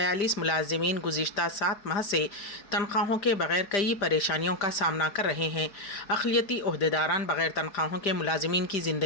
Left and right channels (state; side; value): late; right; 5.0 ms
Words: मुलाजिमीन गुज़िश्ता 7 माह से तनख्वाहों के बगैर कई परेशानियों का सामना कर रहे हैं। अक़लियती ओहदेदारान बगैर तनख्वाहों के मुलाजिमीन की